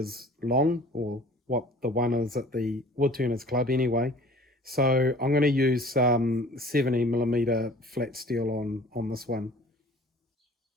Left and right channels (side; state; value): both; normal; correlation 0.48